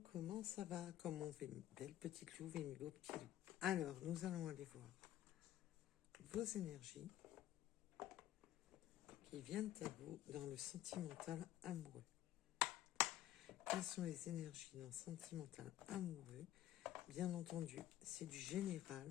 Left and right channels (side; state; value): right; quieter; 13.2 dB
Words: comment ça va? Comment va mes belles petites louves et mes beaux petits loups? Alors, nous allons aller voir vos énergies qui viennent à vous dans le sentimental amoureux. Quelles sont les énergies dans le sentimental amoureux? Bien entendu, c'est du général.